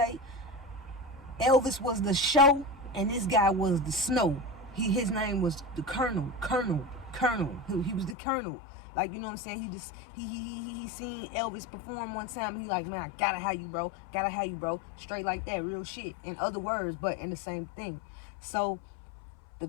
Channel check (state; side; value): drops out; right; at 8.2 s